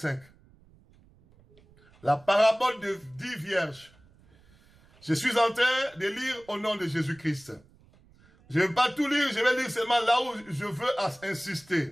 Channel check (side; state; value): right; noise; rumble, 29 dB below the sound